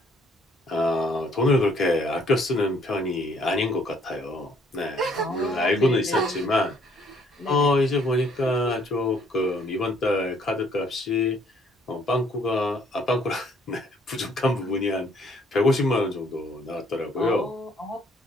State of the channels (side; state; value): both; normal; correlation 0.64